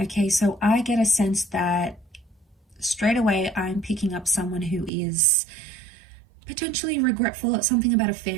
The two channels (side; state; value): left; drops out; at 4.9 s